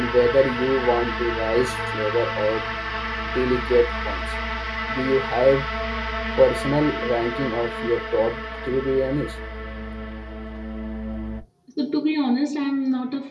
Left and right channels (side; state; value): both; identical; correlation 1.00